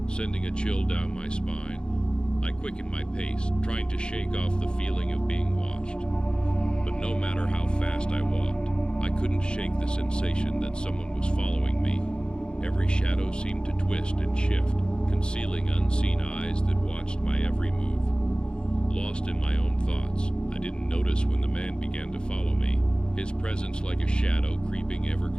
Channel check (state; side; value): late; right; 0.050 ms